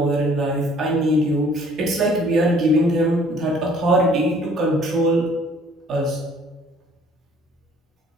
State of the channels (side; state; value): both; normal; correlation 0.57